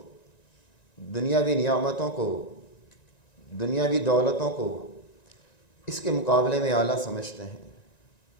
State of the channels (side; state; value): right; late; 1.9 ms